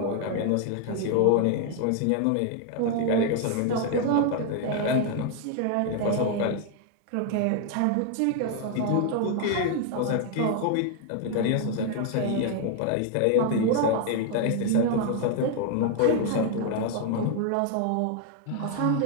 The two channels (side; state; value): both; different; correlation 0.00